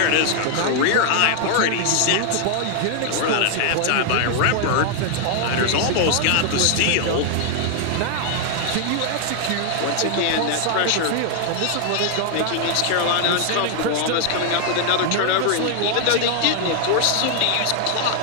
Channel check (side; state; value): both; different; correlation 0.00